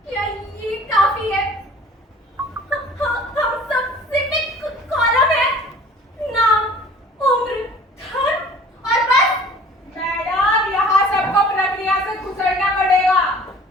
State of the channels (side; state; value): both; normal; correlation 0.48